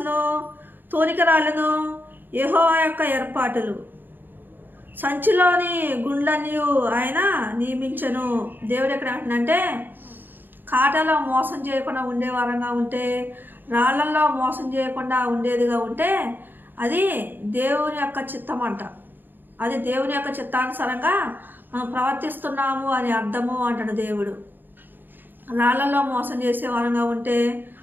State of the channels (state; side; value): late; left; 0.092 ms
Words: తూనికరాళ్ళను యెహోవా యొక్క ఏర్పాటులు, సంచిలోని గుండ్లన్నీ ఆయన నియమించను. దేవుడు ఎక్కడ అంటున్నంటే కాటలో మోసం చేయకుండా ఉండే వారంగా ఉంటే, రాళ్లలో మోసం చేయకుండా ఉండేదిగా ఉంటే అది దేవుని యొక్క చిత్తం అంట. అది దేవుని యొక్క చిత్తానుసారంగా మనం ప్రవర్తిస్తున్నాము అని అర్థము అంటాడు దేవుడు. రాళ్లలో మోసం చేసే వారంగా ఉంటే,